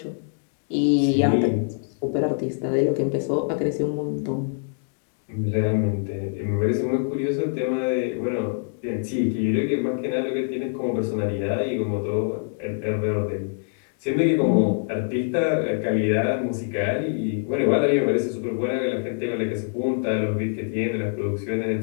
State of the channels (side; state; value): right; silent; digital silence